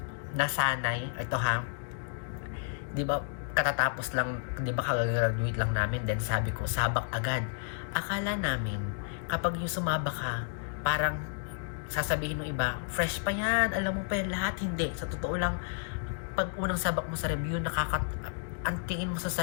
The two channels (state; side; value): silent; right; digital silence